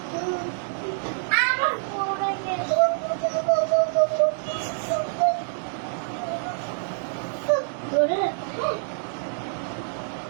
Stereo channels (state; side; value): silent; left; 61 dB below the other